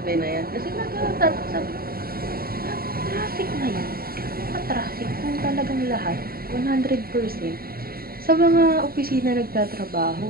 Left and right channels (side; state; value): left; late; 0.43 ms